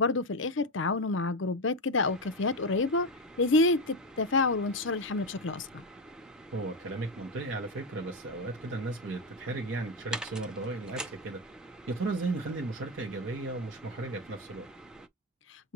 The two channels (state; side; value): normal; both; correlation 0.12